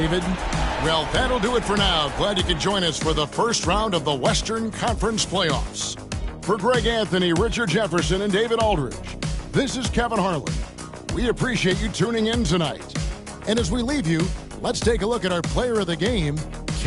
Well, that'll do it for now. Glad you could join us for the first round of the Western Conference Playoffs. For Greg Anthony, Richard Jefferson, and David Aldridge, this is Kevin Harlan. We appreciate you tuning in tonight. And as we leave you, let's take a look at our player of the game,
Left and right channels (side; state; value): both; identical; correlation 1.00